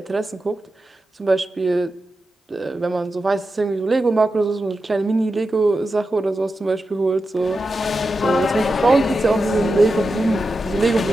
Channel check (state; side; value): normal; both; correlation 0.90